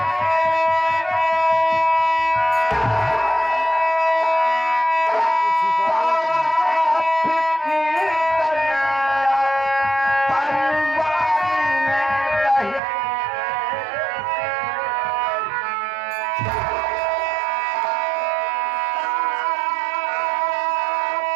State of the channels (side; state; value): left; drops out; at 12.8 s